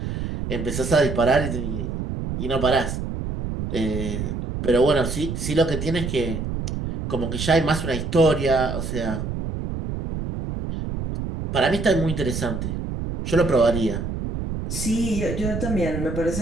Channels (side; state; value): right; noise; rumble, 4 dB below the sound